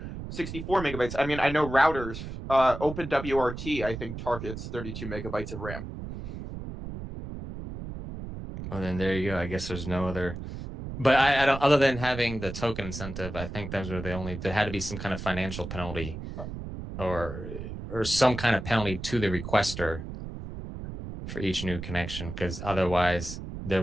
megabytes. I mean, I know routers, OpenWRT, I think, targets 32 megabytes of RAM. Well, then there you go. I guess there's no other. But I don't, other than having the token incentive, I think those were the only, there had to be some kind of financial penalty or some kind of penalty to the requester for each new connection, because otherwise there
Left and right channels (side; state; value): right; noise; rumble, 8 dB below the sound